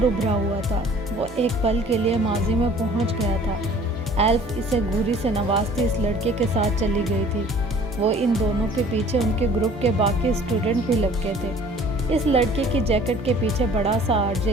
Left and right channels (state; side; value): normal; both; correlation 0.51